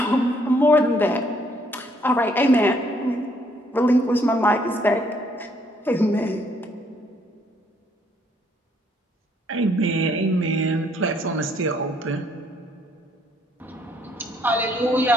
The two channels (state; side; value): normal; both; correlation 0.67